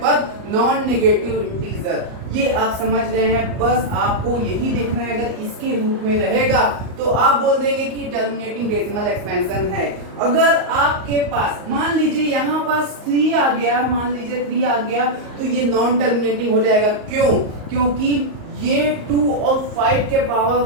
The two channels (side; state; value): left; late; 38 ms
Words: नॉन नेगेटिव इंटीजर। ये आप समझ गए हैं, बस आपको यही देखना है। अगर इसके रूप में रहेगा तो आप बोल देंगे कि टर्मिनेटिंग डेसिमल एक्सपेंशन है। अगर आपके पास मान लीजिए यहाँ पास 3 आ गया, मान लीजिए 3 आ गया, तो ये नॉन टर्मिनेटिंग हो जाएगा। क्यों, क्योंकि ये 2 और 5 के पावर